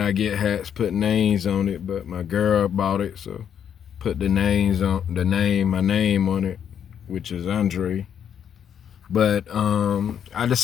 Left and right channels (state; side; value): quieter; right; 8.6 dB